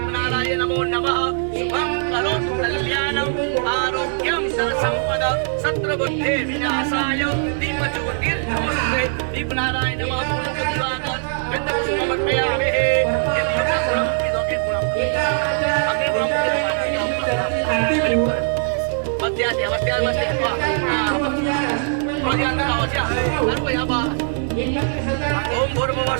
नमो नमः शुभं करोतु कल्याणं आरोग्यं धनसंपद शत्रुबुद्धे विनाशाय दीपज्योतिर्नमस्ते दीपनाराय नमः पुनः दिवाकर गंधपुष्पमर्पयामि ओम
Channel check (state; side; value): silent; left; 65 dB below the other